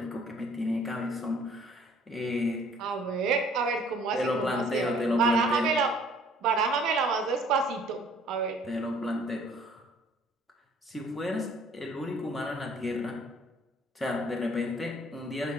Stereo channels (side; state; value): both; normal; correlation 0.57